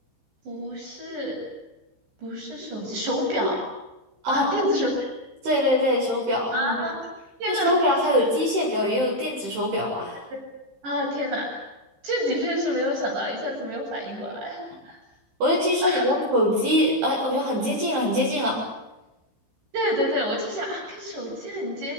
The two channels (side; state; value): left; late; 15 ms